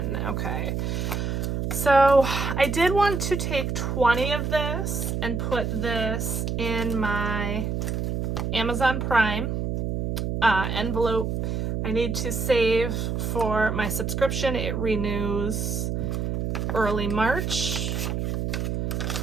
Okay. So I did want to take 20 of this and put this in my Amazon Prime envelope. I need to save for my subscription. It renews early March.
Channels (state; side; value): noise; right; hum, 1 dB below the sound